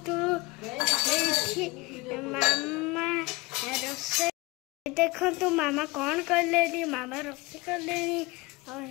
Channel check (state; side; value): quieter; right; 23.6 dB